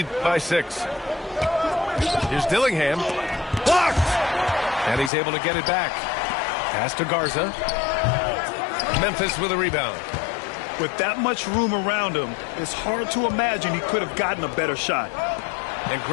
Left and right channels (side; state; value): right; drops out; at 5.1 s